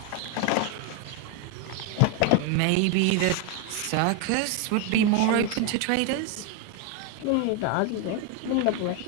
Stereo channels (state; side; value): different; both; correlation 0.01